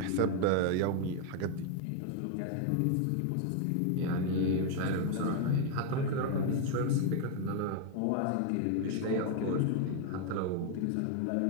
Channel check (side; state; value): both; different; correlation 0.01